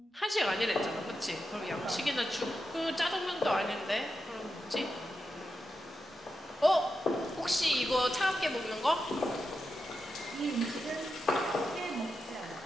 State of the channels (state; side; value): normal; both; correlation 0.88